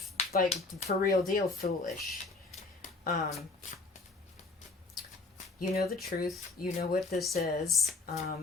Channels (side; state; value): right; quieter; 3.6 dB